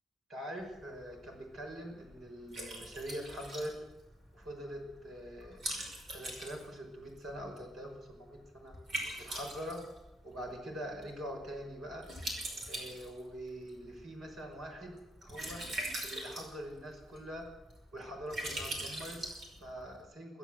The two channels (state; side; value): normal; both; correlation 0.71